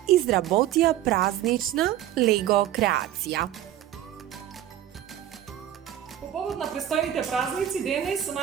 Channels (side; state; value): left; quieter; 12.1 dB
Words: изработија празнична лего креација. По повод на престојните празници, денес со